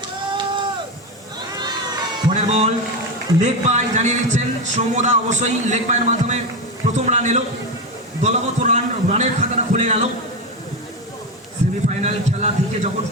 পরের বল লেগ বাই জানিয়ে দিচ্ছেন সৌমদা। অবশ্যই লেগ বাইয়ের মাধ্যমে প্রথম রান এলো, দলগত রানের খাতাটা খুলে গেল। সেমিফাইনাল খেলা থেকে যখন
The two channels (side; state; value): both; normal; correlation 0.15